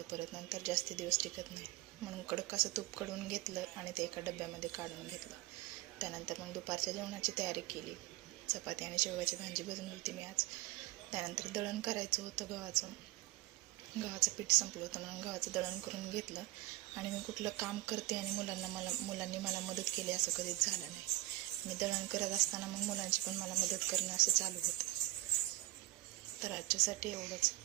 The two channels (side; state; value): left; quieter; 18.6 dB